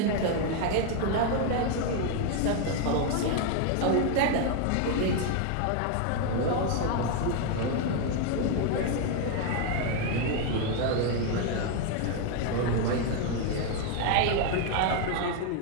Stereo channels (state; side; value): different; both; correlation 0.01